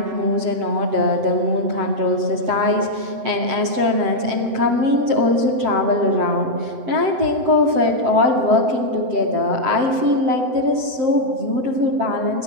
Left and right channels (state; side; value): late; left; 7.5 ms